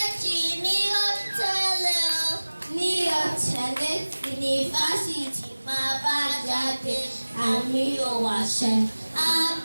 ní ó tẹ̀lé o. Ní ó tẹ̀lé yunifásitì máa bá jáde àmì ò wàṣẹ. A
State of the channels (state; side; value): inverted; both; correlation -1.00